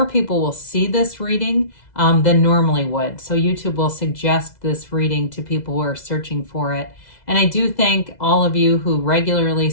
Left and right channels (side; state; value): right; late; 2.0 ms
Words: people will see this reading than normally would. So YouTube will suggest this reading to people who are searching for it. And I do thank all of you who regularly